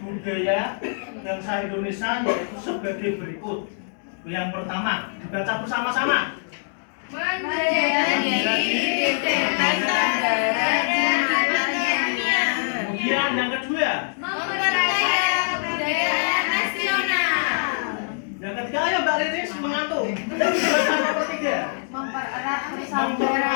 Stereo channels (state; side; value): silent; right; digital silence